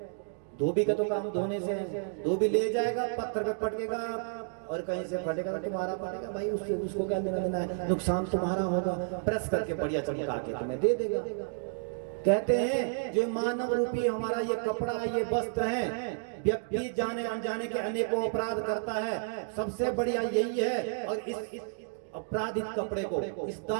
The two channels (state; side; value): silent; left; digital silence